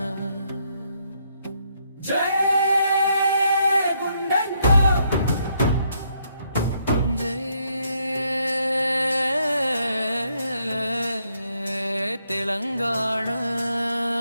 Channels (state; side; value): inverted; both; correlation -0.74